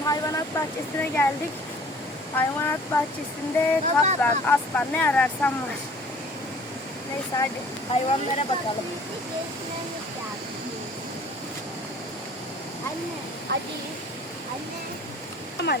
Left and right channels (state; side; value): normal; both; correlation 0.51